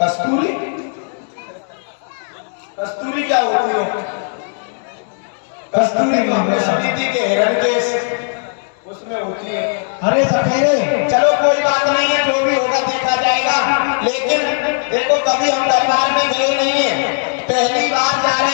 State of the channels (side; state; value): right; silent; 68 dB below the other